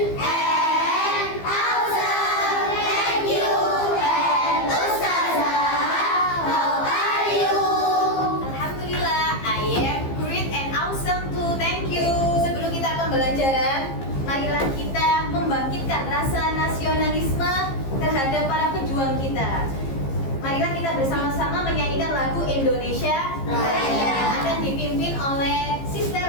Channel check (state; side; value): late; right; 15 ms